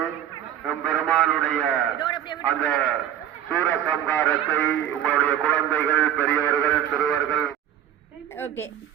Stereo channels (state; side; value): quieter; left; 10.7 dB